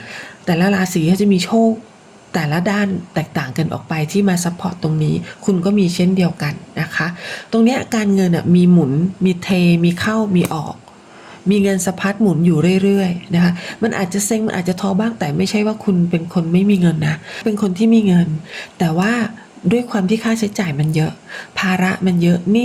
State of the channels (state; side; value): identical; both; correlation 1.00